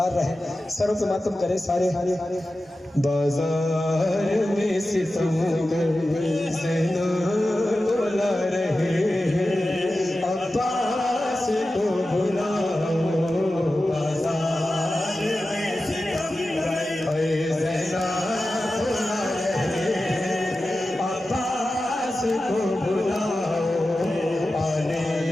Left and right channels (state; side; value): normal; both; correlation 0.94